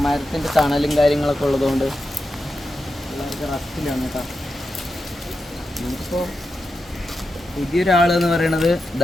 മരത്തിൻ്റെ തണലും കാര്യങ്ങളൊക്കെ ഉള്ളതുകൊണ്ട് പിള്ളേർക്ക് റസ്റ്റിലാണ് കേട്ടോ. നമുക്കിപ്പോൾ പുതിയൊരാളെന്ന് പറയണത്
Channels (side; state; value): both; normal; correlation 0.89